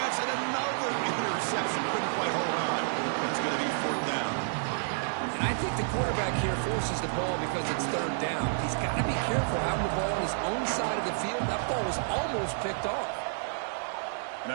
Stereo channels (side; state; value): left; silent; digital silence